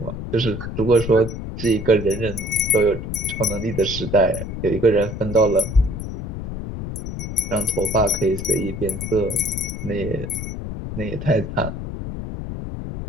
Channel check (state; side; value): noise; left; rumble, 6 dB below the sound